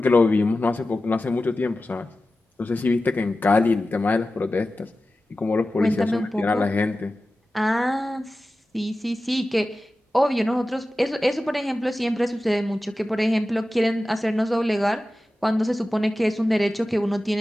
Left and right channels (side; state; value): both; normal; correlation 0.94